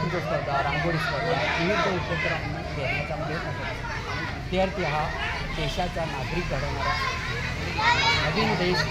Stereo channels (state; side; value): identical; both; correlation 1.00